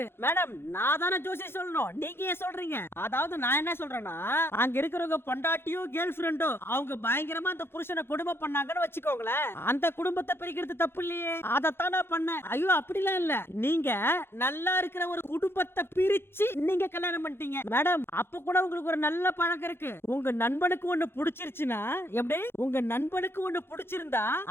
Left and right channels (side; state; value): right; late; 0.11 ms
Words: மேடம் நான் தானே ஜோசி சொல்லணும், நீங்க ஏன் சொல்றீங்க? அதாவது நான் என்ன சொல்றேன்னா அங்க இருக்கிறவங்க பொண்டாட்டியோ கேர்ள் ஃபிரெண்டோ அவங்க பயங்கரமா அந்த புருஷனை குடும்பம் பண்ணாங்கன்னு வச்சுக்கோங்களேன், அந்த குடும்பத்தை பிரிக்கிறது தப்பு இல்லையே, அதைத்தான் நான் பண்ணேன். ஐயோ அப்படிலாம் இல்ல, நீங்க நல்லா இருக்கிற ஒரு குடும்பத்தை பிரிச்சு நீங்க கல்யாணம் பண்ணிட்டீங்க. மேடம் அப்ப கூட உங்களுக்கு ஒரு நல்ல பழக்கம் இருக்கு. உங்க நண்பனுக்கு ஒண்ணு பிடிச்சிருச்சுன்னா எப்படி, உங்க நண்பனுக்கு ஒண்ணு பிடிச்சிருந்தா